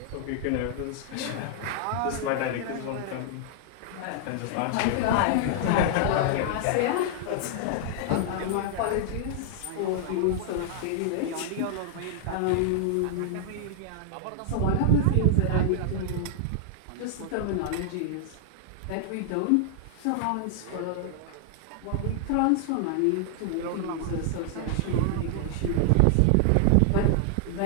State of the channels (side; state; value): both; different; correlation 0.00